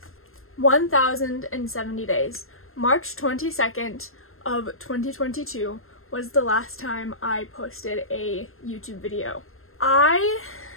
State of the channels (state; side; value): late; right; 0.61 ms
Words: 1,070 days. March 22nd of 2022 was the last time I posted a YouTube video. I